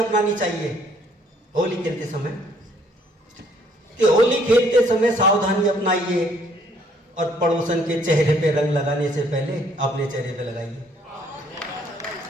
चाहिए होली खेलते समय, कि होली खेलते समय सावधानी अपनाइए और पड़ोसन के चेहरे पे रंग लगाने से पहले अपने चेहरे पे लगाइए।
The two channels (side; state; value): both; normal; correlation 0.64